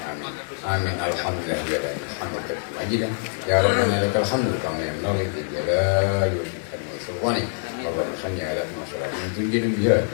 amin. Amin alhamdulillah ya rabbil hamdan ajidan ya rabbana lakal hamdu kama yanbaghi li jalali wajhika wa sultani. Allahumma salli ala Muhammadin tunjina biha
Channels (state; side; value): silent; right; digital silence